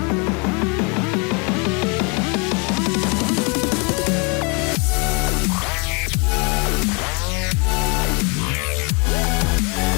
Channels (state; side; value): quieter; right; 32.5 dB